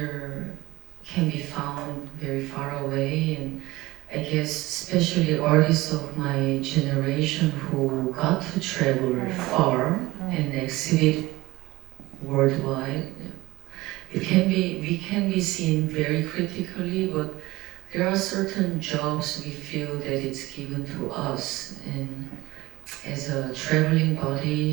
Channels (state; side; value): quieter; left; 19.4 dB